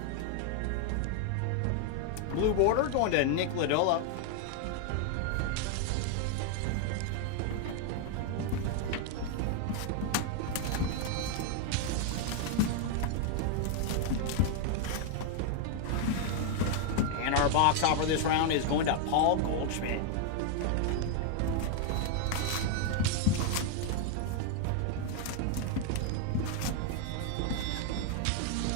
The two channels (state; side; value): different; both; correlation 0.00